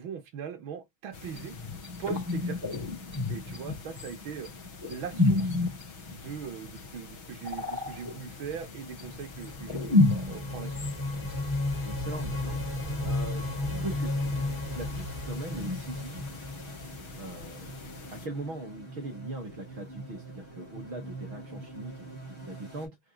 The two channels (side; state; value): left; late; 6.2 ms